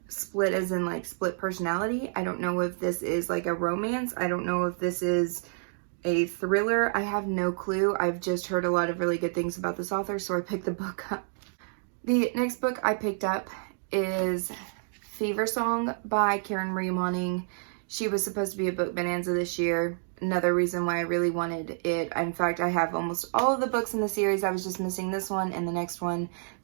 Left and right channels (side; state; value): left; silent; digital silence